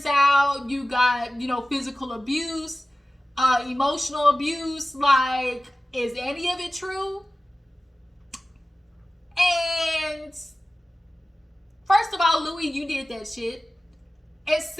out, you got, physical abuse, emotional abuse. Like, is any of it true? And first of all, Louie, you did that shit. And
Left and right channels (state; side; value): normal; both; correlation 0.95